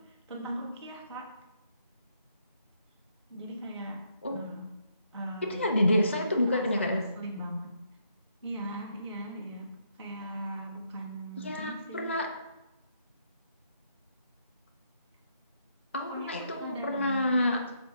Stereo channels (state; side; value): inverted; both; correlation -0.74